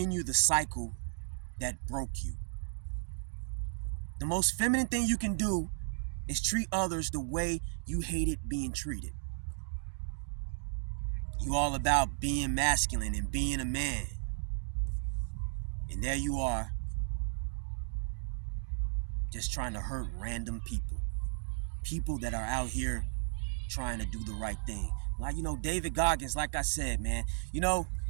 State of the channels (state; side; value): silent; left; digital silence